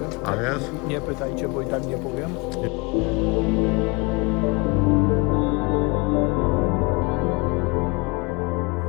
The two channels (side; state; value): right; quieter; 28.0 dB